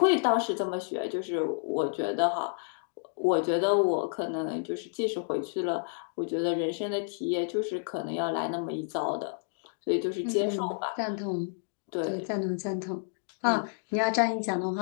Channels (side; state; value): right; silent; digital silence